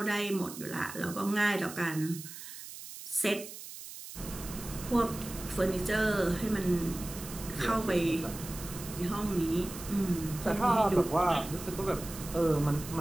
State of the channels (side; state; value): right; noise; hiss, 12 dB below the sound